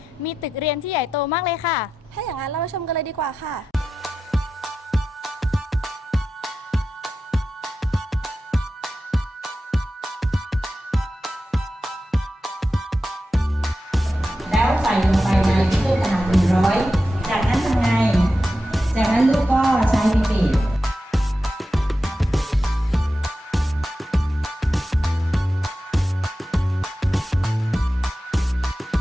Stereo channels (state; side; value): normal; both; correlation 0.91